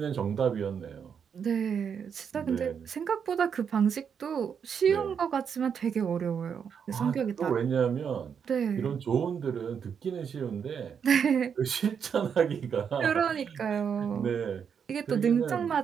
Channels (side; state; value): left; quieter; 7.2 dB